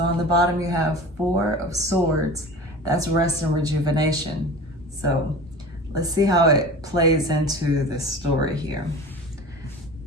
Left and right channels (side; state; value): both; normal; correlation 0.36